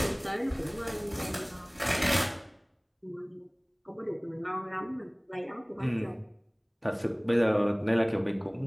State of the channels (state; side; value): identical; both; correlation 1.00